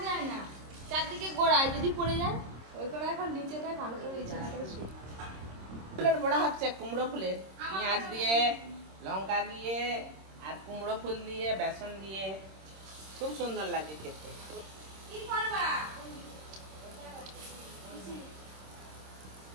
যায় না, চারদিকে গোড়ায় যদি পড়ে যায়। ওই করে এখন নিচেটায় ভালো করে বিছানা করে শুই। ফুলের বড়া হচ্ছে, কুমড়ো ফুলের, পেঁয়াজ দিয়ে, লঙ্কা দিয়ে, আর কুমড়ো ফুল দিয়ে, বেসন দিয়ে, খুব সুন্দর লাগে খেতে। কি করবা?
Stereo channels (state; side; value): late; left; 26 ms